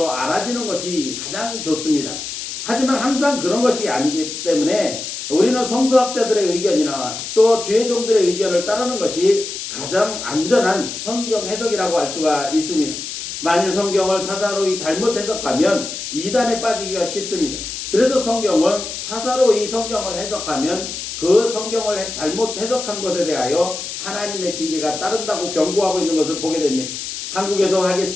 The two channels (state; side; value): noise; left; hiss, 7 dB below the sound